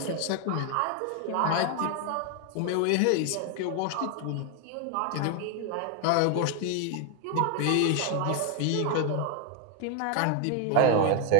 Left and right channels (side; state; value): both; different; correlation 0.01